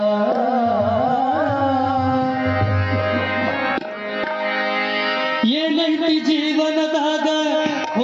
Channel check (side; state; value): both; identical; correlation 1.00